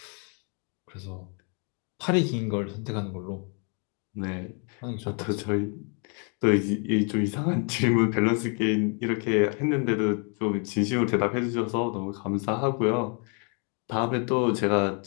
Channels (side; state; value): right; quieter; 38.1 dB